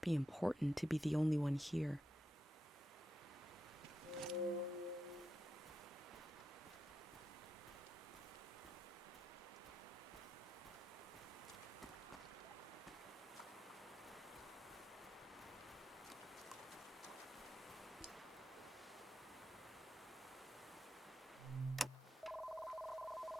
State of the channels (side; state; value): both; normal; correlation 0.87